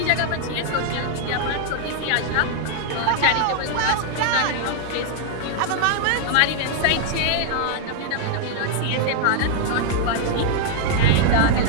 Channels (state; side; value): different; both; correlation 0.00